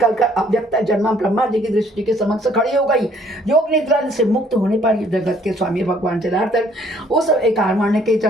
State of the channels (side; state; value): both; normal; correlation 0.61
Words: अव्यक्त जन्मा ब्रह्मा जी की दृष्टि के समक्ष खड़ी हो गई। योग निद्रा से मुक्त होने पर जगत के स्वामी भगवान जलार्दन उस एकावर्ण के